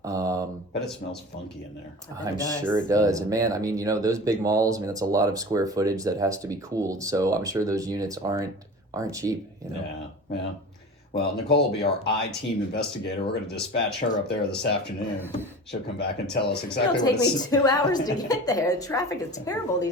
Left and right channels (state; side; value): normal; both; correlation 0.35